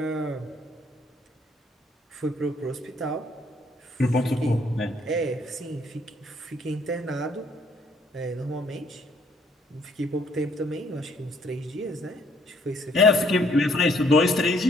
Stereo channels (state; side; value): normal; both; correlation 0.65